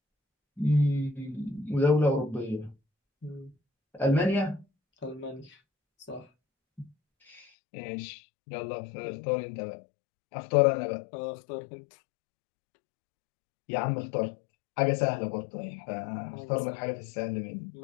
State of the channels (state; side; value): drops out; right; at 7.5 s